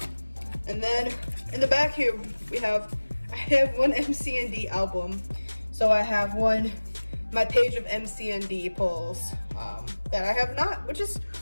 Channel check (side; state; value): both; inverted; correlation -1.00